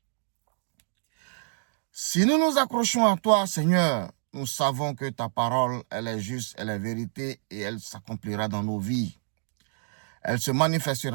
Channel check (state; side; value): silent; left; digital silence